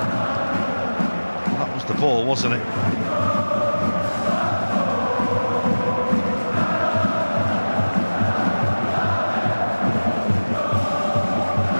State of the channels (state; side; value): inverted; both; correlation -1.00